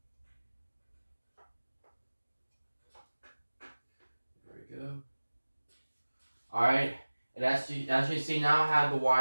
There we go. Alright, and as you see now, I have the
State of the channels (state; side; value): inverted; both; correlation -1.00